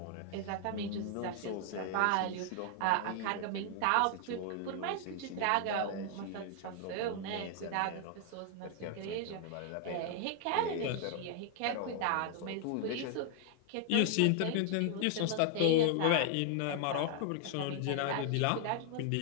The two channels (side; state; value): both; different; correlation 0.00